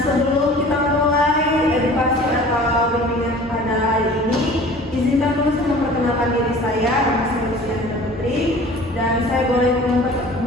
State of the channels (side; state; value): both; normal; correlation 0.45